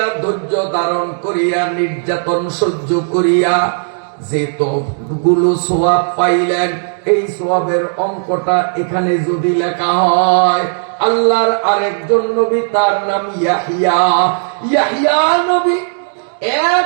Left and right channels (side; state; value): left; silent; digital silence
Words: ধৈর্য ধারণ করিয়া নির্যাতন সহ্য করিয়া যে তো গুলো সোয়াব পাইলেন, এই সোয়াবের অঙ্কটা এখানে যদি লেখা হয়, আল্লাহর আরেকজন নবী, তার নাম ইয়াহিয়া। ইয়াহিয়া নবী